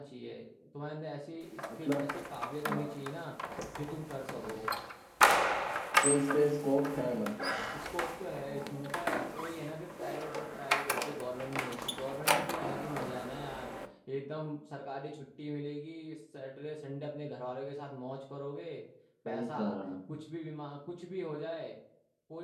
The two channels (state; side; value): identical; both; correlation 1.00